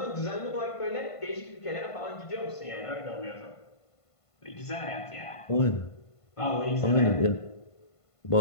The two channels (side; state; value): right; late; 1.5 ms